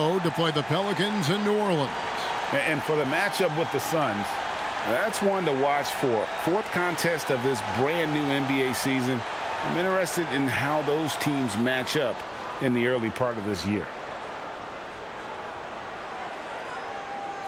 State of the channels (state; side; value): identical; both; correlation 1.00